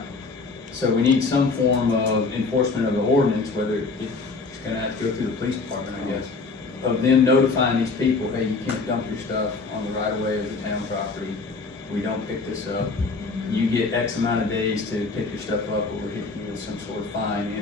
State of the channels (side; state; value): right; quieter; 4.1 dB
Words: So we need some form of enforcement of the ordinance, whether it's gonna have to go through the police department, I guess, of them notifying these people, hey, you can't dump your stuff on the right of way of the town property. We don't pick this up. You get X amount of days to pick your stuff up, or we're hitting you with some sort of fine in